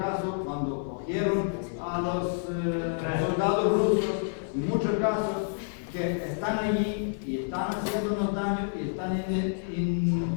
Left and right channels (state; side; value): silent; right; digital silence